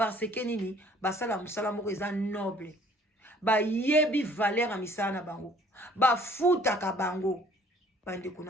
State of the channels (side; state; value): both; normal; correlation 0.57